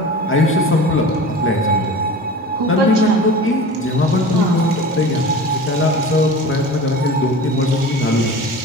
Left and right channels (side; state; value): both; normal; correlation 0.36